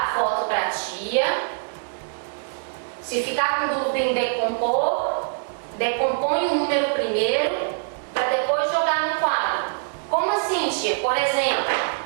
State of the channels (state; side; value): silent; left; digital silence